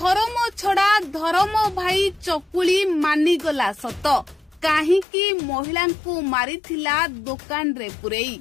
छड़ा धर्म भाई चकुली मानिगला सत काहींकि महिला को मारिथिला दुकान रे पुरेई।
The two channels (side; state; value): right; drops out; at 5.1 s